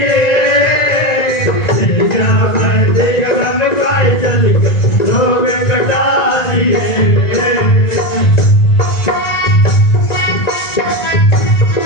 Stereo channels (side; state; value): right; late; 1.9 ms